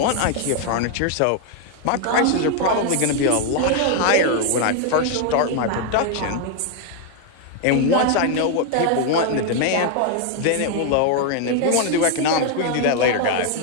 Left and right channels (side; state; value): both; different; correlation 0.00